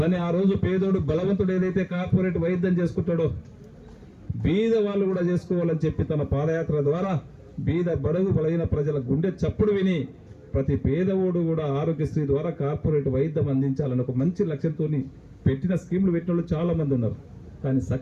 ఆ రోజు పేదోడు బలవంతుడు ఏదైతే కార్పొరేట్ వైద్యం చేసుకుంటాడో బీద వాళ్ళు కూడా చేసుకోవాలని చెప్పి తన పాదయాత్ర ద్వారా బీద బడుగు బలైన ప్రజల గుండె చప్పుడు విని ప్రతి పేదవాడు కూడా ఆరోగ్యశ్రీ ద్వారా కార్పొరేట్ వైద్యం అందించాలని ఒక మంచి లక్ష్యంతో పెట్టిన స్కీములు పెట్టిన వాళ్ళు చాలా మంది ఉన్నారు. కానీ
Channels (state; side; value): identical; both; correlation 1.00